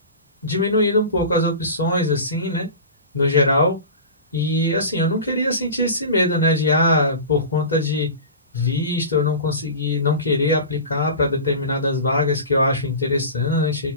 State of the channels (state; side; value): inverted; both; correlation -0.33